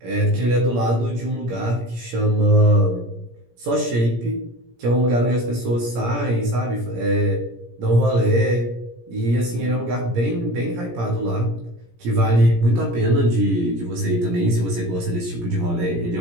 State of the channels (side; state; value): left; late; 17 ms